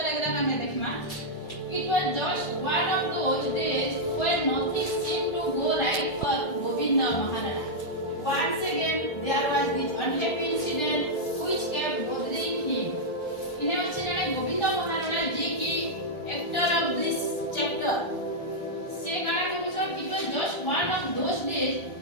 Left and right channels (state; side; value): late; right; 1.4 ms